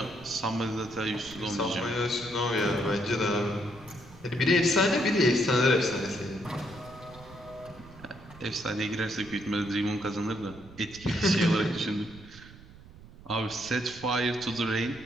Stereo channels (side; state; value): right; noise; rumble, 20 dB below the sound